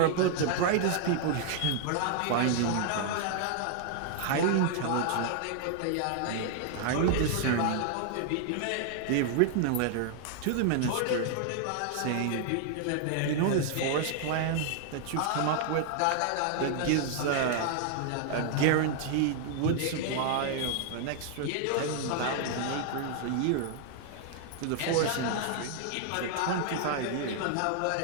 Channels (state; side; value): different; both; correlation 0.00